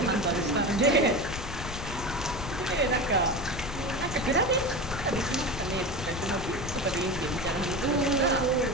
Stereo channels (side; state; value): left; noise; rumble, 8 dB below the sound